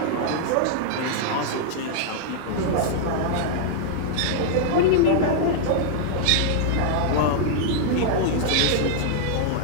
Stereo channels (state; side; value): different; both; correlation -0.01